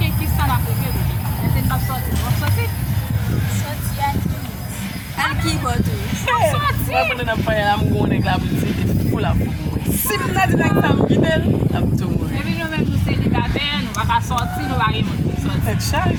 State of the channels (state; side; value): identical; both; correlation 1.00